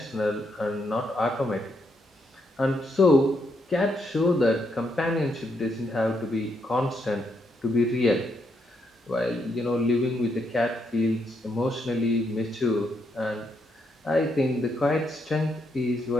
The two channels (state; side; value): normal; both; correlation 0.78